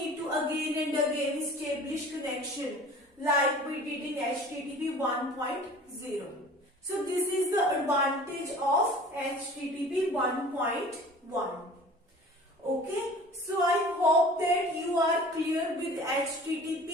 to again and again establish connection like we did in HTTP 1.0. So this is the advantage of HTTP 1.1. Okay, so I hope that you are clear with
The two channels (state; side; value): normal; both; correlation 0.44